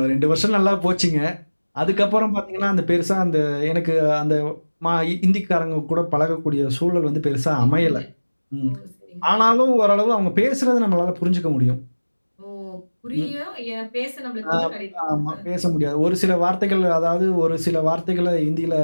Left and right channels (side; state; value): both; inverted; correlation -1.00